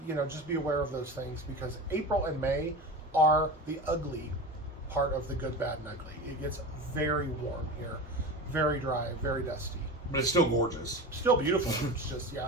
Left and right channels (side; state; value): both; normal; correlation 0.28